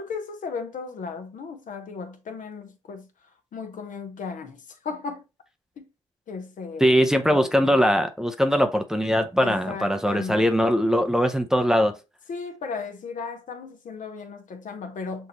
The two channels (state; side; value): normal; both; correlation 0.88